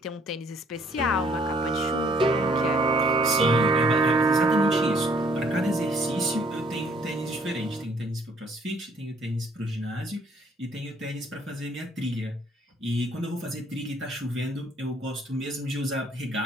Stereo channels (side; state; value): both; normal; correlation 0.62